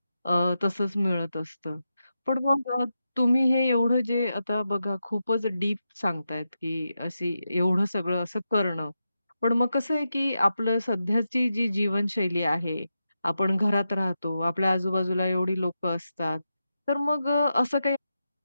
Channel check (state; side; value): inverted; both; correlation -0.88